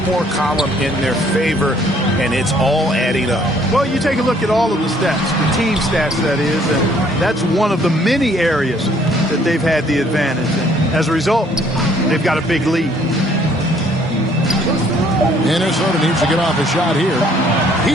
more column in their favor, and it's all adding up. Well, you take a look at all of the stats, the team stats that is, and that's one of the many areas that they've had the advantage. And as a result, they've got a big lead. Minnesota needs to get off a shot here.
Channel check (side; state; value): both; normal; correlation 0.62